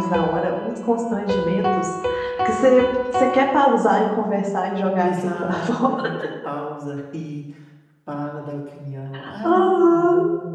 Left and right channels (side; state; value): both; identical; correlation 1.00